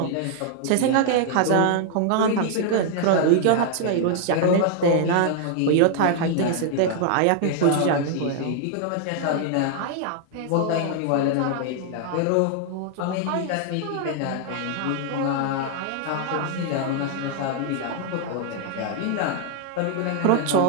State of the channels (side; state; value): both; different; correlation 0.00